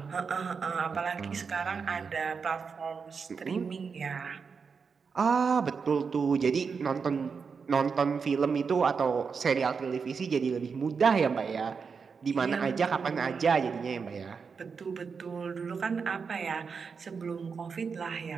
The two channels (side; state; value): left; quieter; 5.6 dB